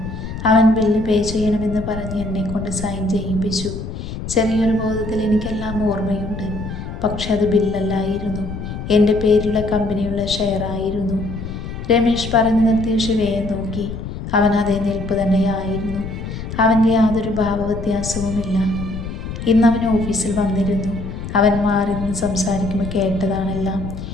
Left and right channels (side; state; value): left; noise; rumble, 7 dB below the sound